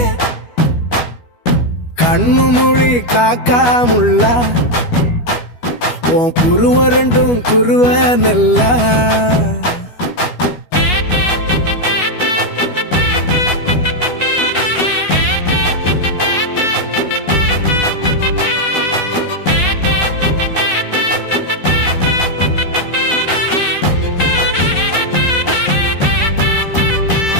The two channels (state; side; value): late; right; 12 ms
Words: கண்ணு மொழி காக்காமுள்ள உன் குருவ ரெண்டும் குருவ நெல்லா